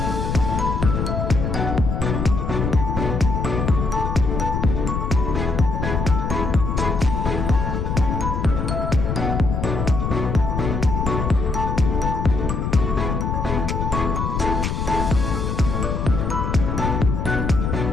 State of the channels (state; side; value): noise; left; rumble, 1 dB below the sound